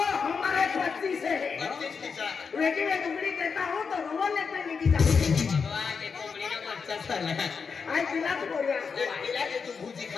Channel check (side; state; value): right; quieter; 5.6 dB